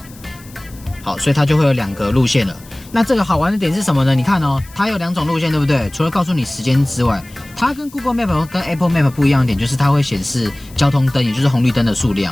好，所以它就会有2個路線了。那這個好玩的點是什麼呢？你看哦，它有2種路線，對不對？除了告訴你時間之外，它跟 Google Map 跟 Apple Map 不一樣的點就是它會顯示交通燈，也就是紅綠燈的數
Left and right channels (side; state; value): left; noise; hiss, 23 dB below the sound